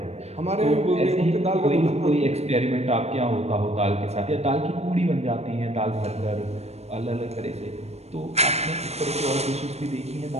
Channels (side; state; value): left; late; 0.31 ms